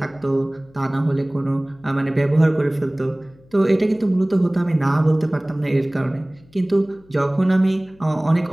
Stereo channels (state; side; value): noise; left; hum, 28 dB below the sound